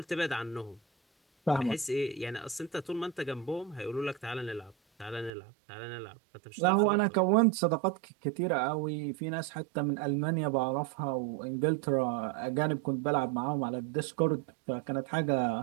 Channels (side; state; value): left; drops out; at 5.3 s